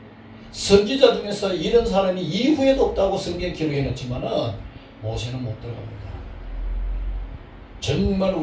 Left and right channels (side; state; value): both; identical; correlation 1.00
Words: 선지자 중에서 이런 사람이 이후에도 없다고 성경 기록해놨지만은 모세는 못 들어갑니다. 정말